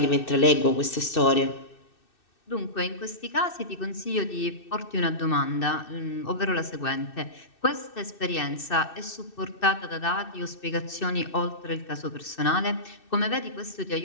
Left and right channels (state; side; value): late; right; 2.6 ms